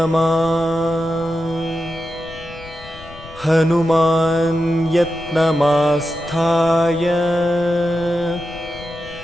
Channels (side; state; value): left; noise; rumble, 18 dB below the sound